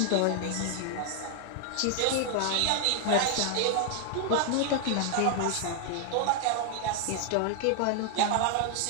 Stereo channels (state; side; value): different; both; correlation 0.00